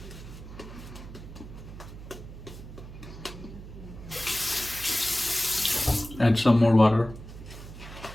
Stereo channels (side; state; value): right; noise; hum, 14 dB below the sound